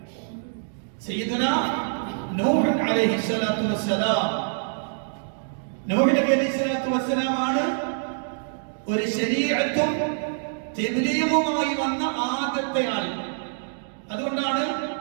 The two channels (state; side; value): silent; left; digital silence